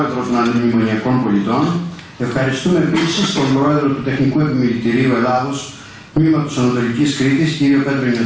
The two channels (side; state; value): both; identical; correlation 1.00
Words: των Αντιμνημονιακών Πολιτών. Ευχαριστούμε επίσης τον πρόεδρο του Τεχνικού Επιμελητηρίου Ελλάδος, τμήματος Ανατολικής Κρήτης, κύριο Πέτρο